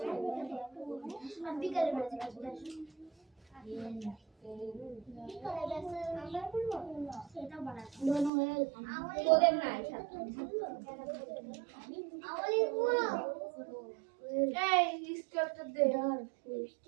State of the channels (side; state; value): left; drops out; at 8.3 s